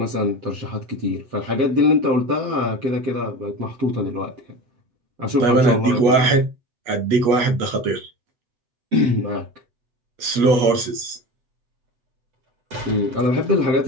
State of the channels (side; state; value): left; late; 8.3 ms